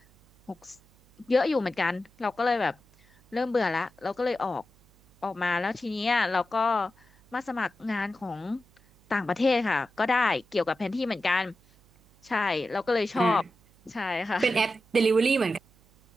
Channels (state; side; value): noise; right; hum, 30 dB below the sound